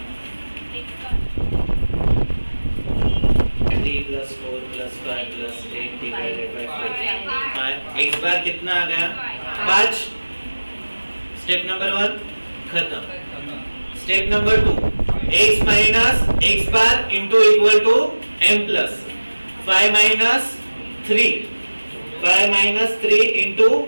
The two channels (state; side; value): inverted; both; correlation -1.00